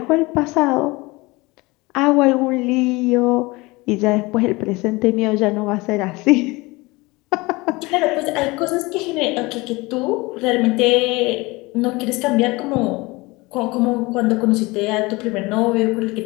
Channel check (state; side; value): quieter; right; 23.2 dB